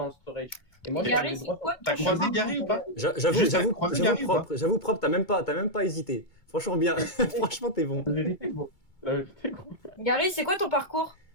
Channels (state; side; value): late; right; 2.3 ms